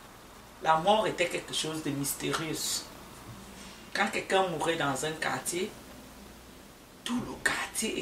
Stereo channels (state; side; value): identical; both; correlation 1.00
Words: la mort était quelque chose de mystérieux. Quand quelqu'un mourait dans un quartier, tout le quartier